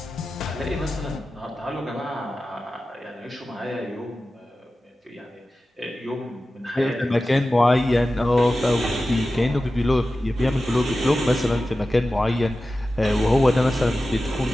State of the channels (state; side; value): normal; both; correlation 0.94